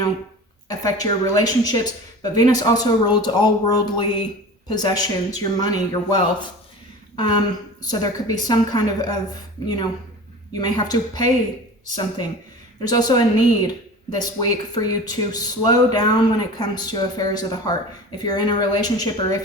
affect your relationships, but Venus also rules all worldly possessions, your money, your wealth. So there could be some kind of you may have to pay something. There's also a need this week for you to slow down when it comes to affairs of the heart. If you're in a relationship or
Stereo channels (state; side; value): normal; both; correlation 0.37